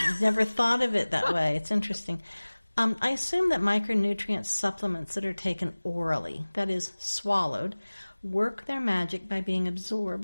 never thought of it that way. It's interesting. I assume that micronutrient supplements that are taken orally, that is, swallowed, work their magic by being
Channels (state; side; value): inverted; both; correlation -1.00